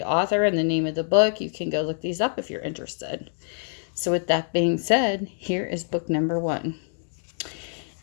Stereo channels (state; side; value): silent; right; 61 dB below the other